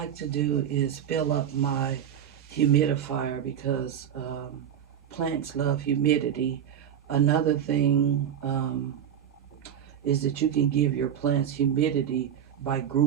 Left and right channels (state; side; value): quieter; left; 9.4 dB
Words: to do is fill up my humidifier because plants love humidity. Another thing is that you can give your plants humidity by